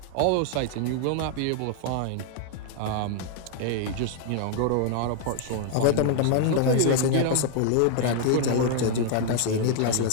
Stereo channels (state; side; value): different; both; correlation 0.00